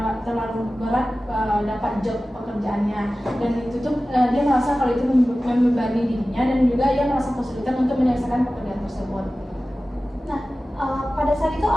berat dapat job pekerjaannya, dan itu tuh dia merasa kalau itu membebani dirinya dan juga ia merasa kesulitan untuk menyelesaikan pekerjaan tersebut. Nah, pada saat itu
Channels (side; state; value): both; normal; correlation 0.96